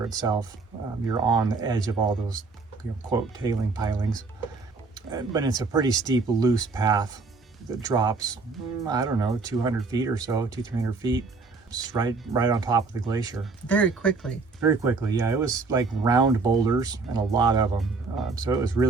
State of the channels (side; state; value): left; quieter; 4.1 dB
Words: itself. You're on the edge of all those, quote, tailing pilings. But it's a pretty steep, loose path that drops, I don't know, 200 feet or so, 200-300 feet. Just right on top of the glacier. Very quickly. Very quickly, yeah. It was like round boulders and a lot of them. So it was